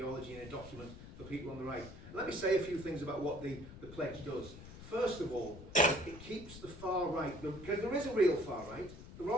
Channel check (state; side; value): noise; left; rumble, 14 dB below the sound